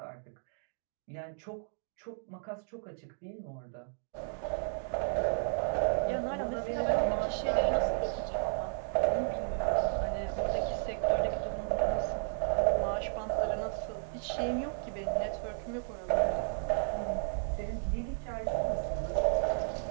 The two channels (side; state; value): left; silent; digital silence